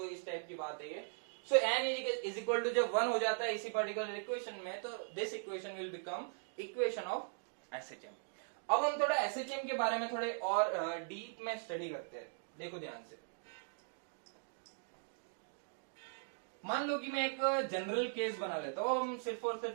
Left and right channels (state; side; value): silent; left; digital silence